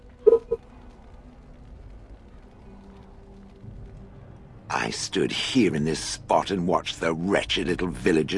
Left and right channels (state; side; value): identical; both; correlation 1.00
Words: I stood here in this spot and watched the wretched little